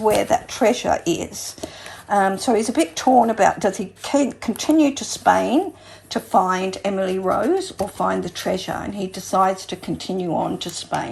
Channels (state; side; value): identical; both; correlation 1.00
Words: where that treasure is. So he's a bit torn about, does he continue to Spain to find Emily Rose or find the treasure? And he decides to continue on to